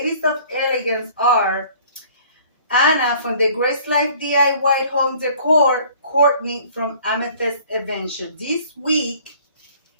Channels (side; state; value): both; inverted; correlation -0.53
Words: of Elegance are Anna from the Grace Life DIY Home Decor, Courtney from Amethyst Adventure. This week